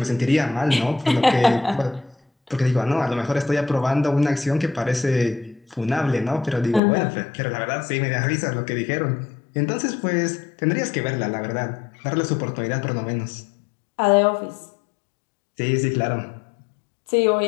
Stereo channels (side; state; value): right; drops out; at 6.8 s